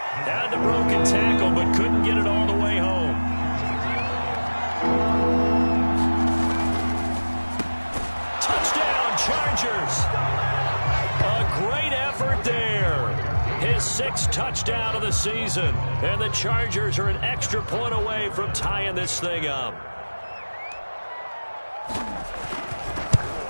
the broken tackle, but couldn't get it all the way home. Touchdown, Chargers. A great effort there. His 6th touchdown of the season. And the Chargers are an extra point away from tying this thing up.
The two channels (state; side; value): inverted; both; correlation -1.00